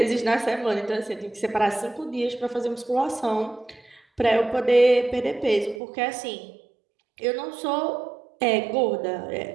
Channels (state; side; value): drops out; left; at 5.8 s